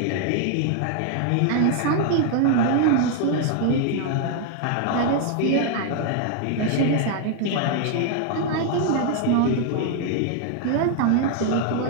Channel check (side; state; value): both; different; correlation 0.00